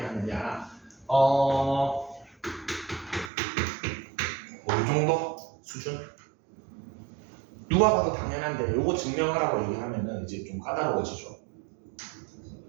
이 정도 수준? 누가 봐도 당연한데 요거 증명하라고 얘기하면은 이제 좀 까다로워지죠.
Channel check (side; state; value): left; drops out; at 3.3 s